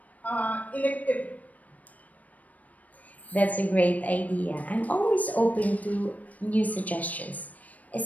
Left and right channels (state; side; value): late; right; 0.072 ms